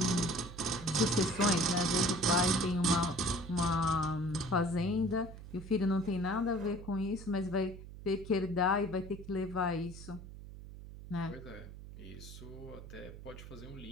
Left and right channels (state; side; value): noise; right; hum, 14 dB below the sound